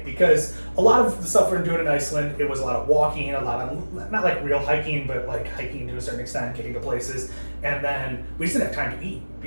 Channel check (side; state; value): both; inverted; correlation -1.00